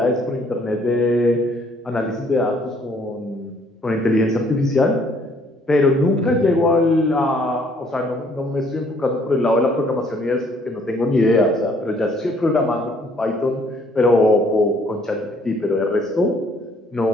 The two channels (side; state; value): both; normal; correlation 0.63